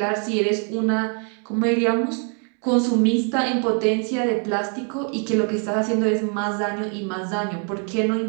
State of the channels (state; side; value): quieter; left; 39.3 dB